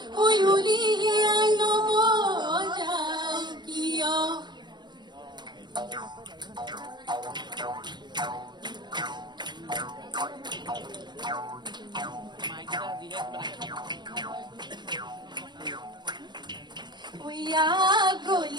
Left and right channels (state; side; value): late; left; 0.21 ms